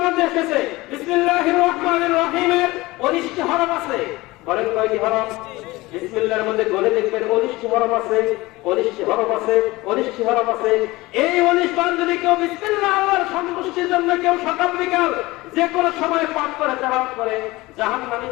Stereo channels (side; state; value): right; quieter; 20.5 dB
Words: মধ্যে এসেছে বিসমিল্লাহির রহমানির রহিমের 19টি হরফ আছে। বলেন কয়টি হরফ? বিসমিল্লাহর মধ্যে গলে দেখবেন 19টি হরফ আছে, 19টি হরফ আছে, 19টি হরফ আছে। এই 19 বার যদি কেউ বিসমিল্লাহ আল্লাহর সন্তুষ্টির জন্য কেউ সকাল বিকাল যে কোনো সময় পাঠ করে তেলাওয়াত করে,